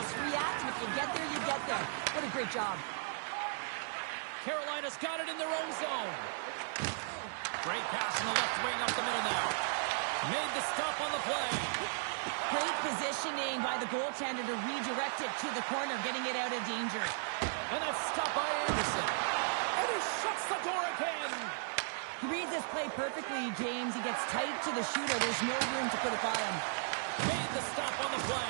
react, and if you get there, you get there. What a great job. Carolina's got it in their own zone. Great pass in the left wing up the middle now. Made the stop on the play. Great positioning by the goaltender to redirect it to the corner, getting it out of danger. And that's stopped by Anderson. And he shuts the door again. He reads this play perfectly, James. He gets tight to the shooter. There's no room to put it by him. Made the stop on the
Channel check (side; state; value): left; silent; 54 dB below the other